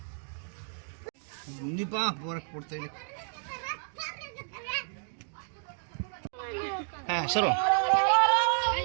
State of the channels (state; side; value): silent; left; digital silence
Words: ನಿಪಾ ಬೋರಕ್ಕೆ ಕೊಡ್ತಾ ಇಲ್ಲ ಹಾಂ ಸರು